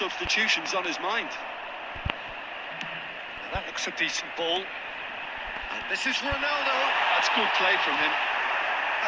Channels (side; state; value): both; identical; correlation 1.00